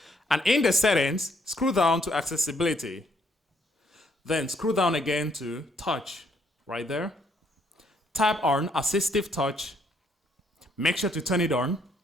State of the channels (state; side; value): normal; both; correlation 0.70